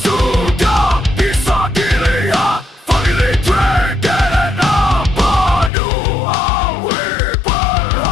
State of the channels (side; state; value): right; drops out; at 5.7 s